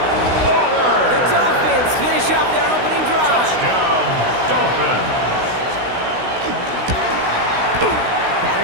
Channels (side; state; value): left; late; 16 ms